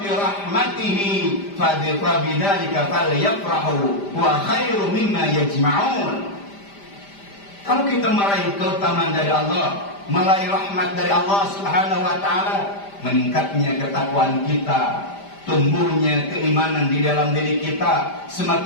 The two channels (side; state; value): right; late; 5.0 ms